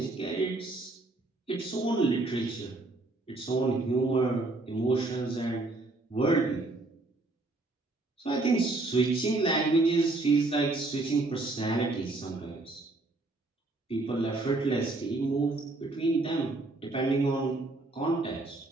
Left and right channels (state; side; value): quieter; left; 3.1 dB